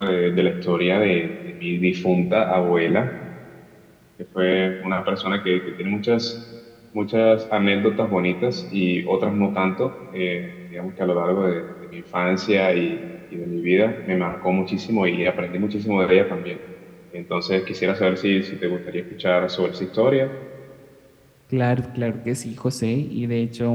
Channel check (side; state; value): both; identical; correlation 1.00